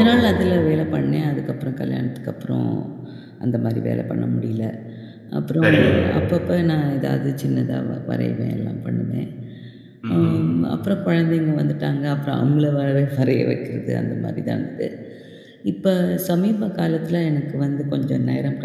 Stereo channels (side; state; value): both; identical; correlation 1.00